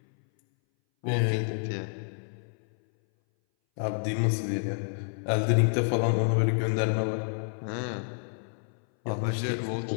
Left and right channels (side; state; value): right; silent; 59 dB below the other